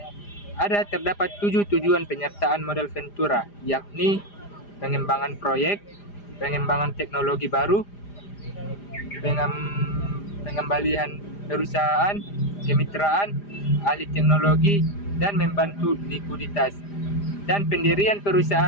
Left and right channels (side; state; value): right; late; 5.0 ms